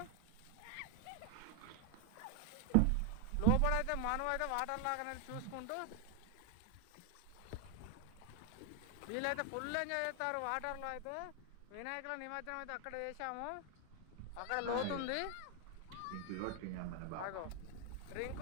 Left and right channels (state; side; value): different; both; correlation 0.01